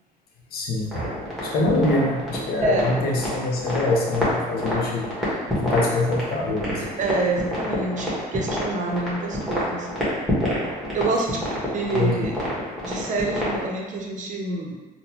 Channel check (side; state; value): both; normal; correlation 0.44